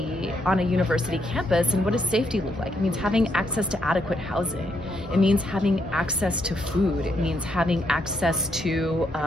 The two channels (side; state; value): both; normal; correlation 0.77